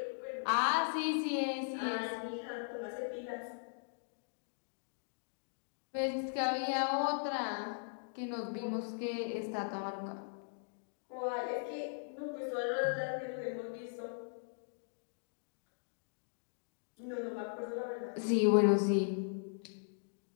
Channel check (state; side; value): silent; right; digital silence